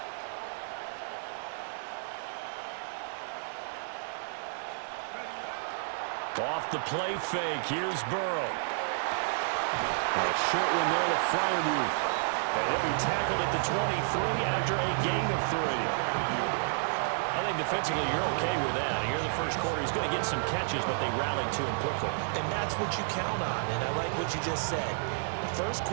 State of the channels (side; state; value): left; silent; digital silence